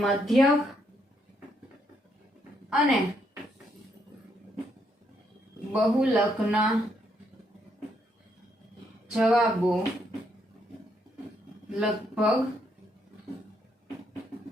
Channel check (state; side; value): normal; both; correlation 0.75